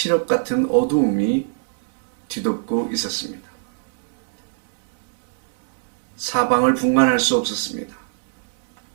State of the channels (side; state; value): left; silent; 63 dB below the other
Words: 같은 어두움이 뒤덮고 있었습니다. 사방을 분간할 수 없었습니다.